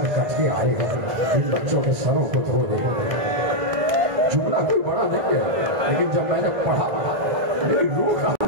کٹ کے آئے ہیں, ان بچوں کے سروں کو دھو دے. جملہ کوئی بڑا نہیں ہے, لیکن جب میں نے پڑھا میری روح کا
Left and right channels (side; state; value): left; late; 1.5 ms